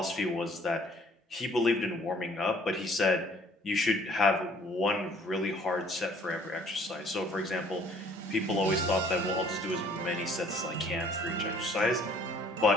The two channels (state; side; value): normal; both; correlation 0.58